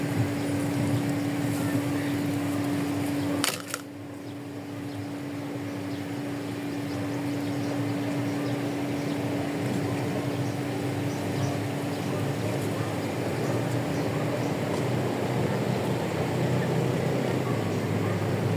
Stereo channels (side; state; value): both; identical; correlation 1.00